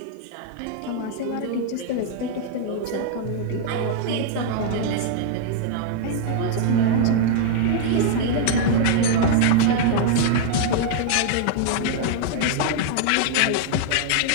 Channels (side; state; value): both; different; correlation -0.01